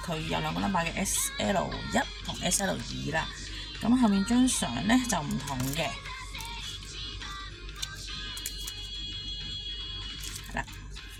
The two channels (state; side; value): identical; both; correlation 1.00